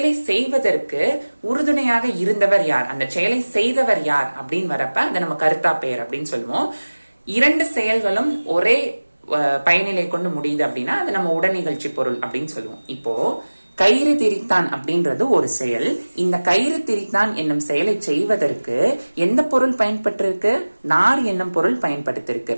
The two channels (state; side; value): inverted; both; correlation -1.00